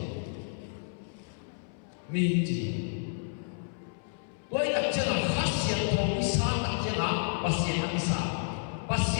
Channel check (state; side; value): silent; right; 57 dB below the other